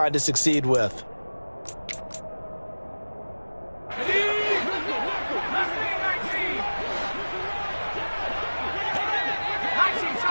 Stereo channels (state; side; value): inverted; both; correlation -1.00